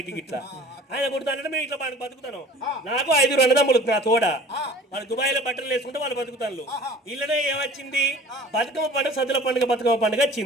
ఇట్లా ఆయన కుడతానంటే మేము ఇట్లా బతుకుతాను నాకు 5 అన్నదమ్ములు నా తోడ వాళ్ళు దుబాయ్ లో బట్టలు వేసుకుంటే వాళ్ళు బతుకుతాను ఇళ్ళనే ఏమొచ్చింది బతుకమ్మ పండుగ సద్దుల పండుగ బతుకమ్మ పండుగ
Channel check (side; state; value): both; normal; correlation 0.46